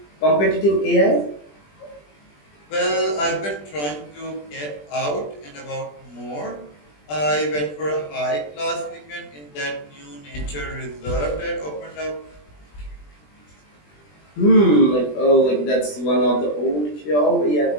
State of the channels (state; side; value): late; right; 20 ms